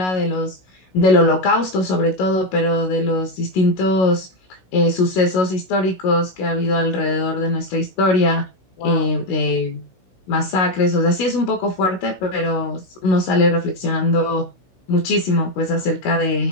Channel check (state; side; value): late; right; 16 ms